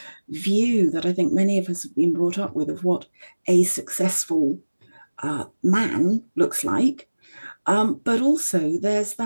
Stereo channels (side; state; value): both; inverted; correlation -1.00